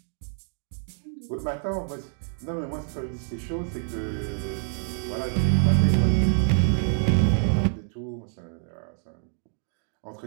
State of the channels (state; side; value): silent; left; digital silence